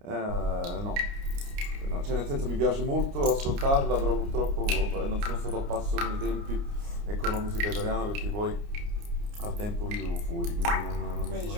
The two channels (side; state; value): left; late; 29 ms